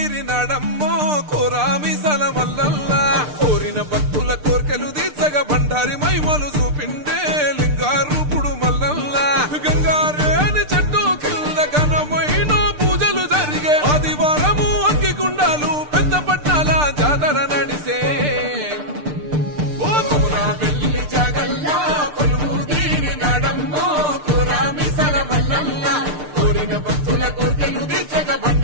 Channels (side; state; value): left; late; 6.7 ms